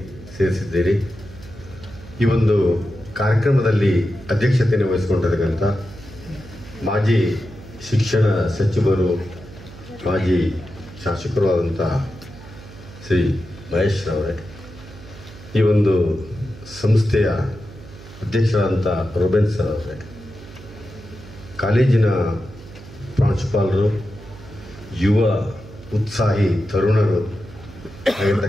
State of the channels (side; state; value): right; noise; hum, 18 dB below the sound